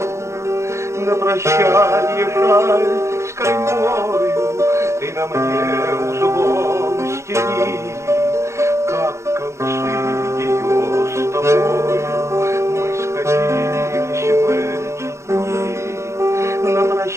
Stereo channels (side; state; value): left; late; 0.14 ms